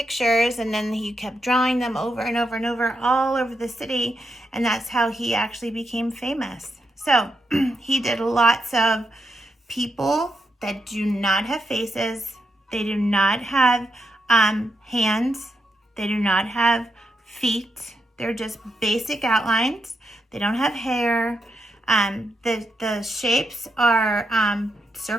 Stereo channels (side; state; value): both; normal; correlation 0.83